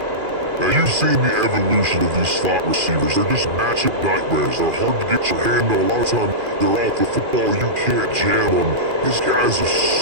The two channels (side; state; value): left; late; 2.4 ms